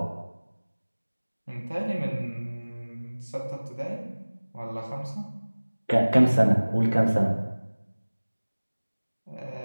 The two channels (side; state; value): both; inverted; correlation -1.00